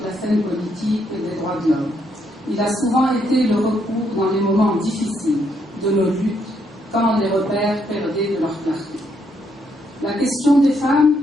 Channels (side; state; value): both; normal; correlation 0.75